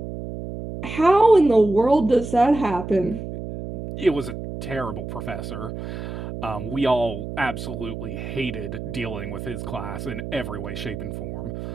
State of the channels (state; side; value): noise; right; hum, 8 dB below the sound